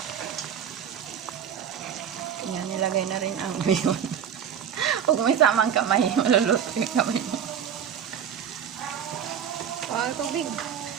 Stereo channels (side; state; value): left; quieter; 8.4 dB